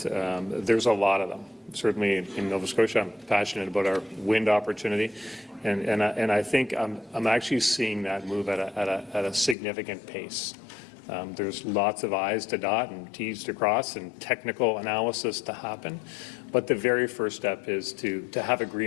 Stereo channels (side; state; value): right; drops out; at 9.6 s